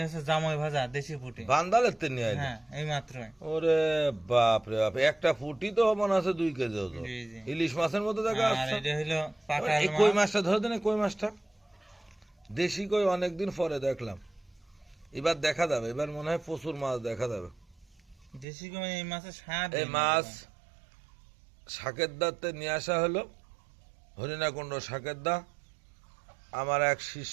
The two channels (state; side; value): drops out; left; at 18.4 s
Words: হচ্ছে জামাই ভাজা দেশি পুঁটি। বান্দালের তে নিয়ে আইলো। হ্যাঁ এই মাত্রই। ওরে বাপ রে বাপ, একটা ফুটি তো মনে আছে 2 কেজি ওজন। জি, জি। ইলিশ মাছের মতো দেখা আর যাচ্ছে। এটা হলো পাকা এই কই মাছ। মাছটা ধরে দেন, কই মাছটা দেশি কই, অনেকদিন পরে দেখলাম। এবার দেখা যাবে, এবার মনে হয় প্রচুর মাছ দেখা যাবে। দেশি কই এই মাছের স্বাদ। এই মাছ শাকের দাতে নিয়ে আসা হলো, হরিণাকুণ্ড শাকের দা। আমার এক